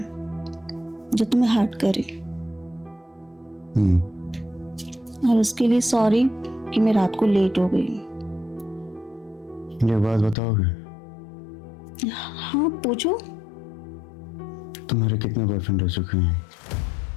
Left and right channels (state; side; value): drops out; right; at 10.4 s